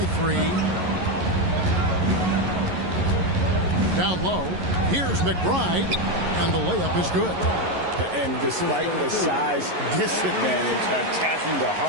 3. Down low. Here's McBride. And the layup is good. And despite the size disadvantage, attacking the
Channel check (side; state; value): left; late; 11 ms